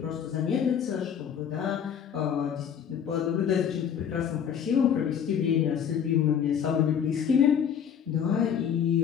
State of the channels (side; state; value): right; quieter; 8.3 dB